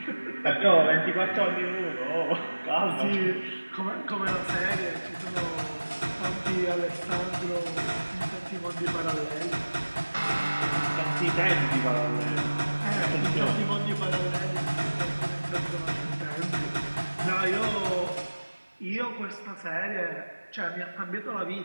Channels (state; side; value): inverted; both; correlation -1.00